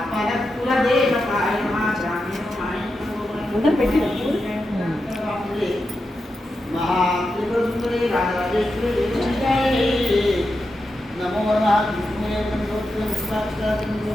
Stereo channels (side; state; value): both; normal; correlation 0.88